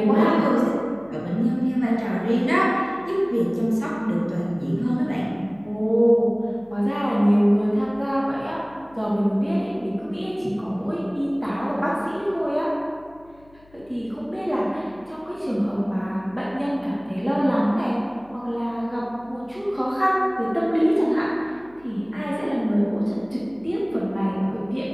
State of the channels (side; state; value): left; noise; hum, 28 dB below the sound